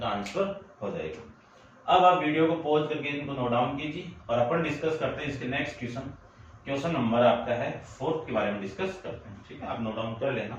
आंसर हो जाएगा। अब आप वीडियो को पॉज करके इनको नोट डाउन कीजिए और अपन डिस्कस करते हैं इसके नेक्स्ट क्वेश्चन नंबर आपका है 4 के बारे में डिस्कस करते हैं, ठीक है, आप नोट डाउन कर लेना।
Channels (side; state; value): both; identical; correlation 1.00